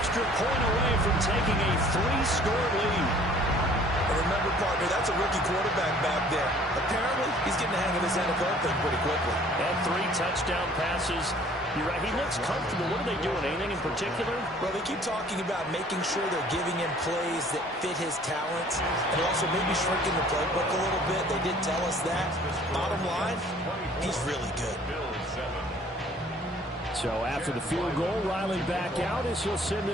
point away from taking a 3-score lead. And remember, partner, that's a rookie quarterback back there. Apparently, he's getting the hang of this NFL thing pretty quickly. And 3 touchdown passes. You're right. He looks comfortable. What are they doing? Anything in particular? Well, they keep talking about making sure they're giving him plays that fit his talents and also maybe shrinking the playbook a little bit. They did tell us that. Bottom line, he's really good. So after the field goal, Riley back out as he'll send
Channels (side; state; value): both; normal; correlation 0.54